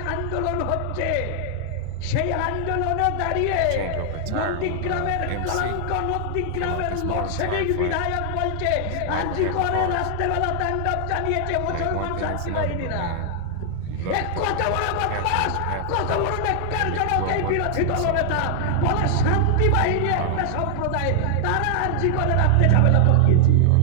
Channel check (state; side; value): different; both; correlation -0.01